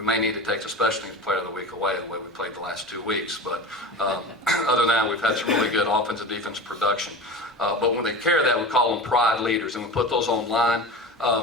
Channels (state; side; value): normal; both; correlation 0.32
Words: may need to take the special teams player of the week away the way we played the last 2 weeks, but other than that, we've had some really good offensive, defense production. But when they carry that, we call them pride leaders, and we put those online.